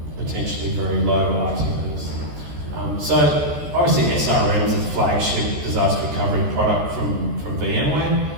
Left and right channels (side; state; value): left; late; 14 ms